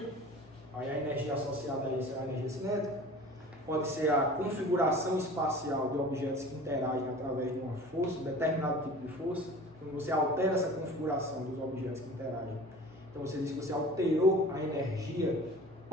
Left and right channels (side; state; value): both; normal; correlation 0.41